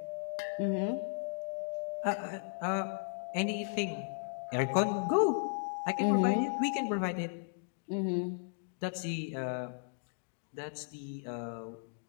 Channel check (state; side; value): silent; right; digital silence